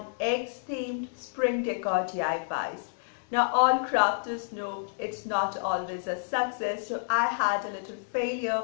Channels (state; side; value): silent; right; digital silence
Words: eggs themed spring decor DIYs. Now all crafters know it's not always a success, so I had a little